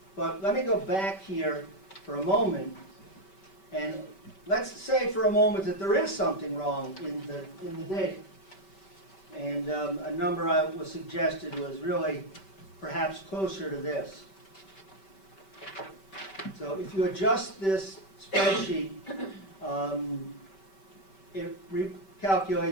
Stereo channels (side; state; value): right; late; 5.2 ms